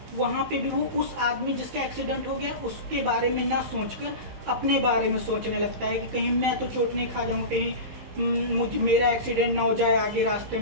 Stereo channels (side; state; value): left; late; 15 ms